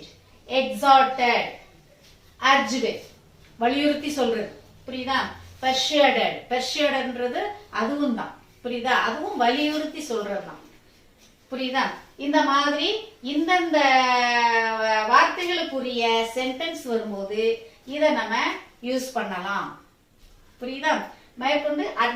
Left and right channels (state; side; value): identical; both; correlation 1.00